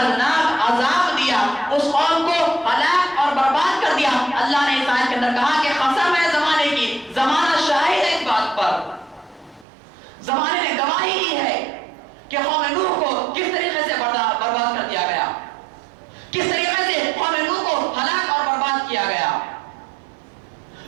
عذاب دیا، اس قوم کو ہلاک اور برباد کر دیا. اللہ نے اس آیت کے اندر کہا کہ قسم ہے زمانے کی، زمانہ شاہد ہے اس بات پر، زمانے نے گواہی کی ہے کہ قوم نوح کو کس طریقے سے برباد کر دیا گیا، کس طریقے سے قوم نوح کو ہلاک اور برباد کیا گیا.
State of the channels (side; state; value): left; drops out; at 9.7 s